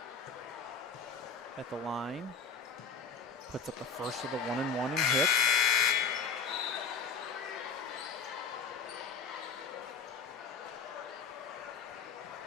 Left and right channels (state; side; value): quieter; right; 5.3 dB